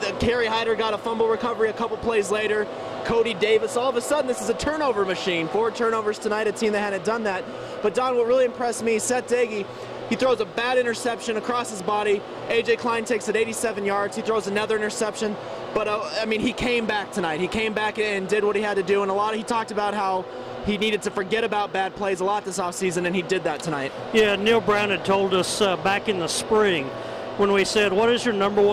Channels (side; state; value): both; identical; correlation 1.00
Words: Kerry Hyder got a fumble recovery a couple plays later. Cody Davis, all of a sudden, this is a turnover machine. 4 turnovers tonight, a team that hadn't done that. But Don, what really impressed me, Seth Daigie, he throws a bad interception across his body. A.J. Klein takes it 87 yards. He throws another interception. But, I mean, he came back tonight. He came back and did what he had to do. And he talked about how he needed to forget about bad plays a lot this offseason, and he did that tonight. Yeah, Neil Brown had told us back in the spring when we said, what is your